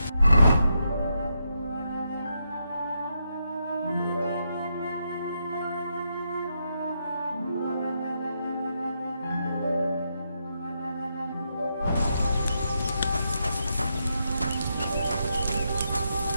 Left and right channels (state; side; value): inverted; both; correlation -0.82